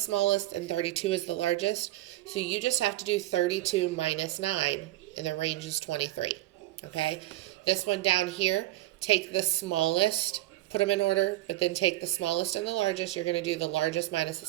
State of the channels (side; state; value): left; quieter; 16.4 dB